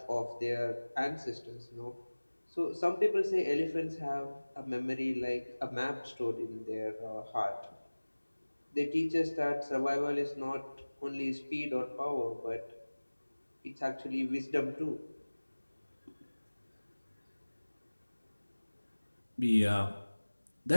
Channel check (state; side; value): inverted; both; correlation -1.00